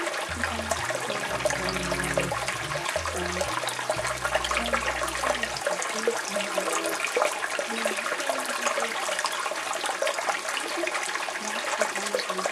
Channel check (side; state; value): both; identical; correlation 1.00